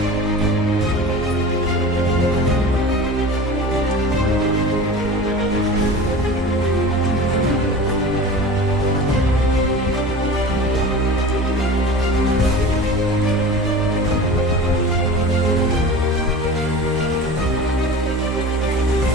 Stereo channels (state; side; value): normal; both; correlation 0.35